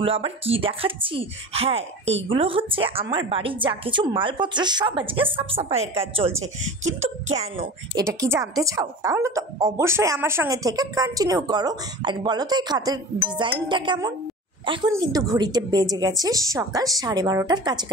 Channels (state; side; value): normal; both; correlation 0.35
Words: আবার কি দেখাচ্ছি? হ্যাঁ, এইগুলো হচ্ছে আমার বাড়ির যা কিছু মালপত্র সব আজকে সাফ সাফাইয়ের কাজ চলছে। কিন্তু কেন, এটা কি জানতে চাও? তাহলে তো অবশ্যই আমার সঙ্গে থেকে কন্টিনিউ করো। আর বলো তো এই খাতের ডিজাইনটা কেমন? এখন কিন্তু ঘড়িতে বেজে গেছে সকাল 12:30